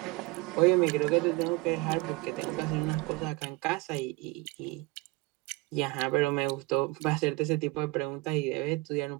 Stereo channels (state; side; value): quieter; left; 22.8 dB